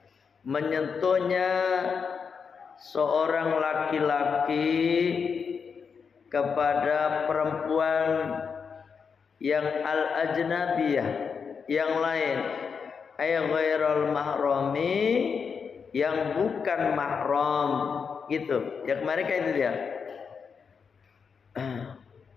menyentuhnya seorang laki-laki kepada perempuan yang al-ajnabiyah, yang lain, ay ghairal mahrami, yang bukan mahram, gitu. Ya kemarin kayak itu dia.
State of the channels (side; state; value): right; quieter; 6.0 dB